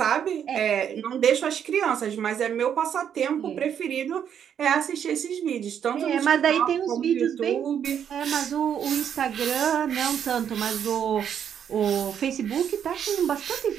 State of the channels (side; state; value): left; quieter; 8.6 dB